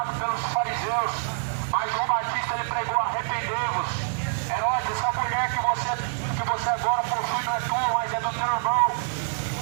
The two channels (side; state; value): left; silent; digital silence